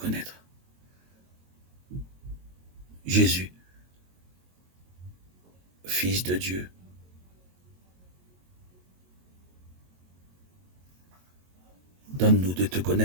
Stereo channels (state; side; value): late; left; 22 ms